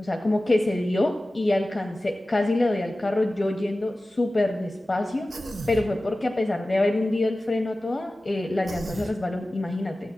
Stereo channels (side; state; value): both; normal; correlation 0.96